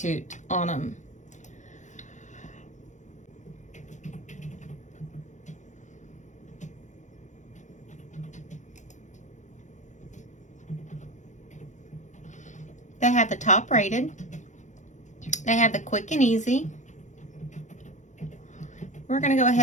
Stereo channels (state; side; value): late; right; 0.35 ms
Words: on them. They have the top rated. They have the quick and easy. We're going to go